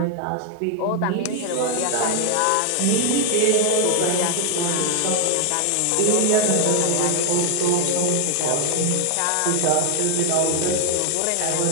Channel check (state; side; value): different; both; correlation 0.00